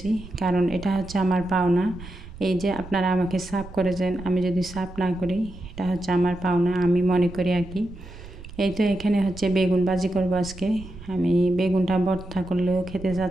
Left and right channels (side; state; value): right; noise; rumble, 15 dB below the sound